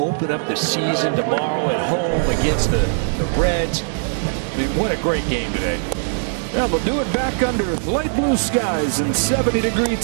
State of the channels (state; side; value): silent; left; 60 dB below the other